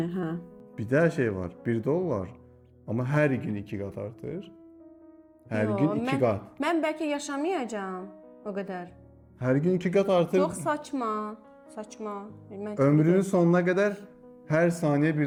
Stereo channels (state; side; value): identical; both; correlation 1.00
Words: hə. Bir də şey var. 1 dollar amma hər gün 2 qat artır. Hər gün 2 qat. Mən bəlkə yaşamayacağam o qədər. Hər gün 2 qat artır. Çox saçma. Saçma. Ömrünün sonuna qədər hər saniyə